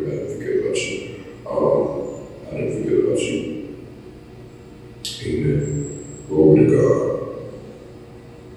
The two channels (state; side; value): identical; both; correlation 1.00